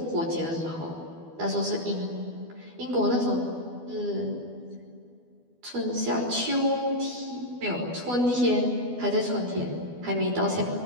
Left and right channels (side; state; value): left; late; 12 ms